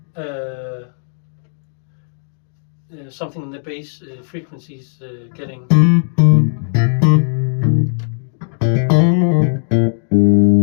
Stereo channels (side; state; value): right; silent; digital silence